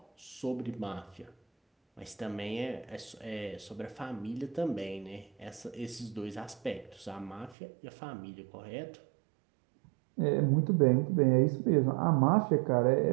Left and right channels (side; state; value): left; drops out; at 7.6 s